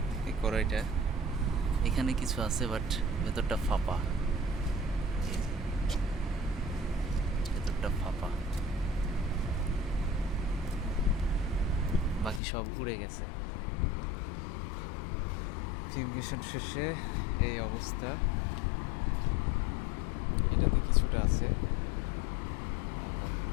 এই কড়াইটা এখানে কিছু আছে, বাট ভেতরটা ফাঁপা, ভেতরটা ফাঁপা, বাকি সব উড়ে গেছে। ফিউমিগেশন শেষে এই অবস্থা। এটাতে কিছুটা আছে,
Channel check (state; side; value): drops out; right; at 12.4 s